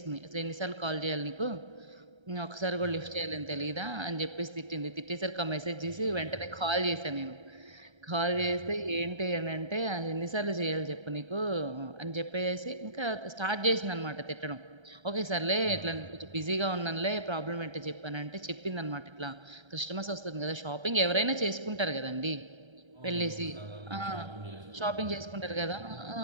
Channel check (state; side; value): late; left; 1.3 ms